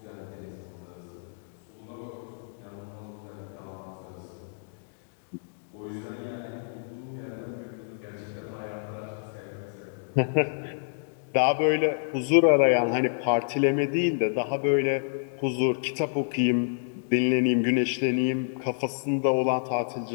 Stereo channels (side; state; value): right; silent; digital silence